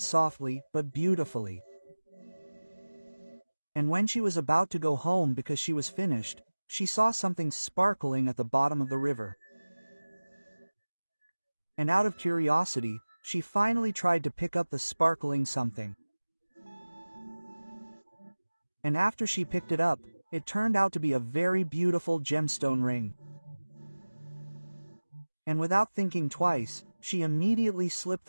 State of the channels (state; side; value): inverted; both; correlation -1.00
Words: softly but beautifully. And when she was about to go home because she was finished, she saw something sparkling at the bottom of the river. And out of curiosity, she finally tried to pick up the sparkling something. And after she picked it up, it turned out to be a very beautiful gemstone ring. And without thinking twice, she immediately slipped